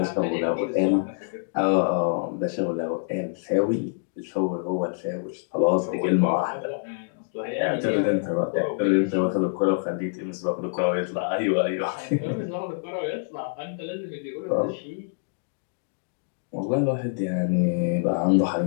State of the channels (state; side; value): silent; right; digital silence